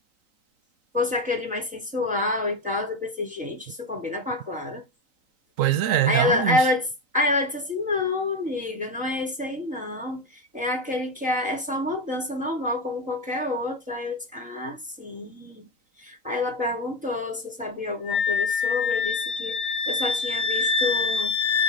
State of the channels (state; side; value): late; left; 3.9 ms